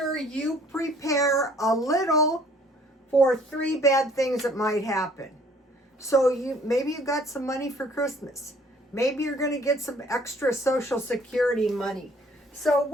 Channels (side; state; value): both; normal; correlation 0.57